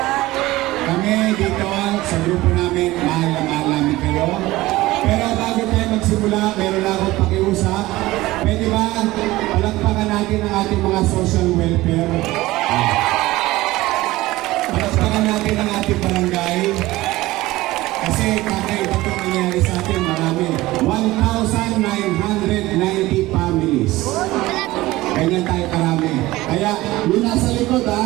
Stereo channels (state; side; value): quieter; left; 18.3 dB